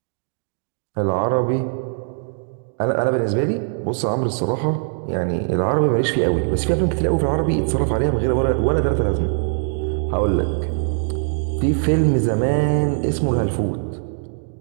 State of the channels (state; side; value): silent; left; digital silence